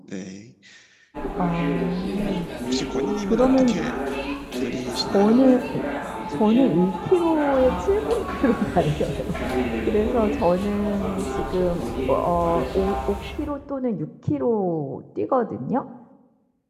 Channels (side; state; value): both; identical; correlation 1.00